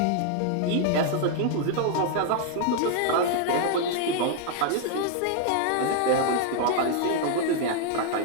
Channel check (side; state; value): both; different; correlation 0.00